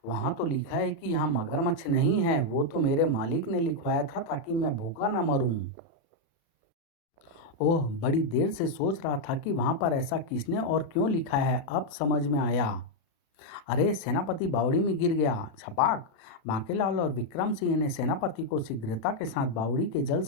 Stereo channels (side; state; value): right; late; 36 ms